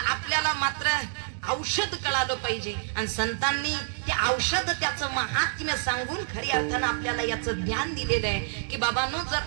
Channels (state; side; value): silent; left; digital silence